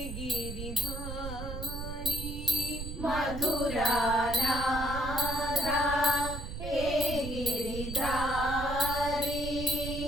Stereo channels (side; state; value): right; noise; rumble, 7 dB below the sound